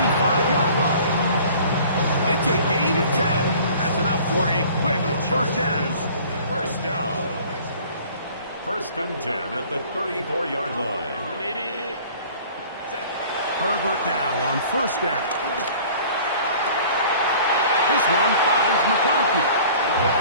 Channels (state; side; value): inverted; both; correlation -0.48